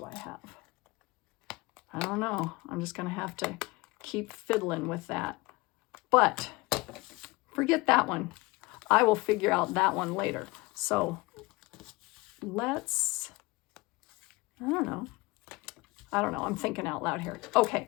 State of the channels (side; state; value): right; quieter; 23.3 dB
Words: I have? I don't know. I'm just going to have to keep fiddling with that. But forget that one. I will figure out that one later. So let's, I don't know. I'm thinking out loud here. Okay,